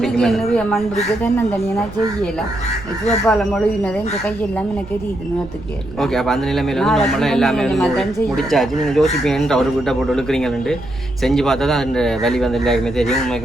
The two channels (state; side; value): noise; right; rumble, 16 dB below the sound